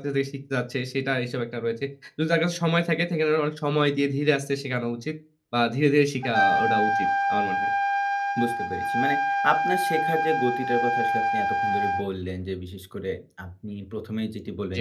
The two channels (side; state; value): both; identical; correlation 1.00